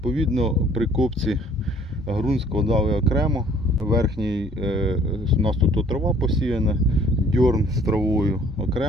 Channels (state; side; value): normal; both; correlation 0.57